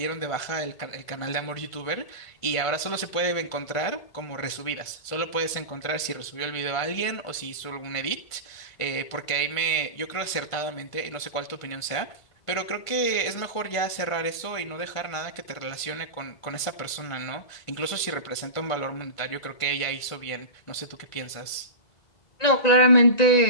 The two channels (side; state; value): right; late; 1.5 ms